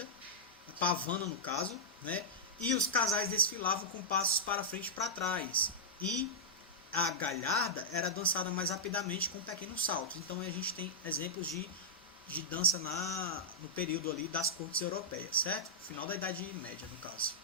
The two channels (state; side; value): normal; both; correlation -0.10